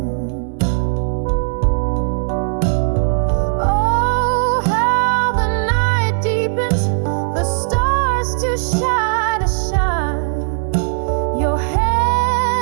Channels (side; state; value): left; silent; digital silence